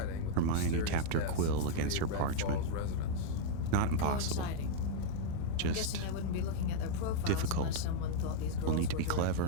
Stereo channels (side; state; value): both; different; correlation -0.01